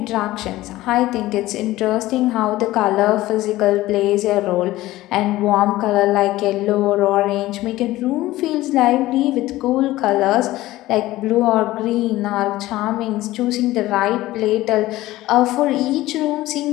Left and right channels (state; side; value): quieter; right; 16.8 dB